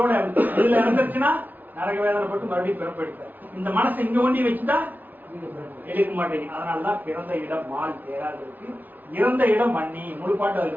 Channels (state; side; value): late; left; 0.081 ms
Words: இதுல இறந்துருச்சுன்னா நரக வேதனைப்பட்டு மறுபடியும் பிறப்பெடுத்த. இந்த மனசை இங்க ஒண்டி வச்சுட்டா எடுக்க மாட்டேங்க. அதனாலதான் பிறந்த இடம் மால் தேராது இருக்கு. இறந்த இடம் வன்னி. முழு பாட்டு அதுல